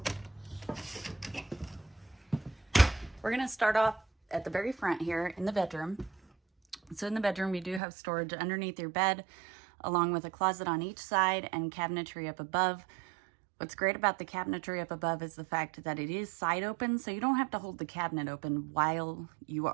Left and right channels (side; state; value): left; drops out; at 7.8 s